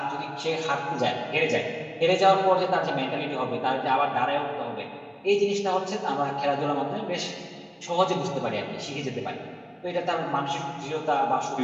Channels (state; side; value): identical; both; correlation 1.00